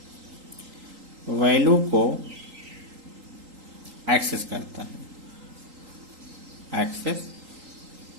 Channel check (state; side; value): late; left; 3.8 ms